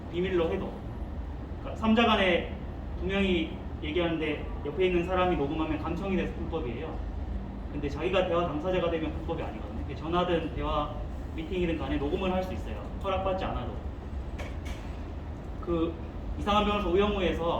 비밀로 해도. 그러니까 3자 간에 두 명이 얘기하는데 옆에 있는 사람이 녹음하면 감청이 돼서 불법이에요. 근데 자기가 대화 당사자가 되면 불법이 아니거든요. 전화든 대화 미팅이든 간에 녹음을 할 수 있어요. 허락받지 않아도. 이상한 변호사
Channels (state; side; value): identical; both; correlation 1.00